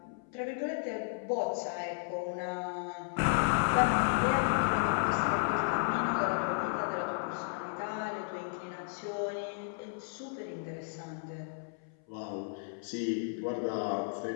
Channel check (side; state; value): right; silent; 55 dB below the other